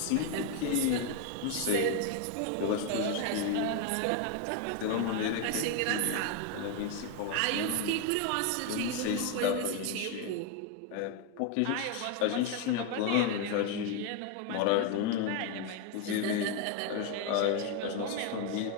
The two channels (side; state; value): both; different; correlation 0.01